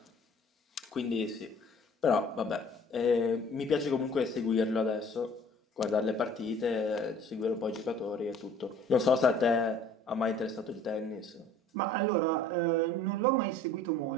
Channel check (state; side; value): normal; both; correlation 0.51